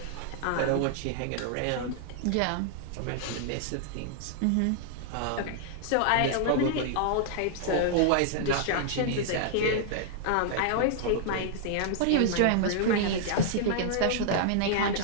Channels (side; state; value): both; different; correlation -0.01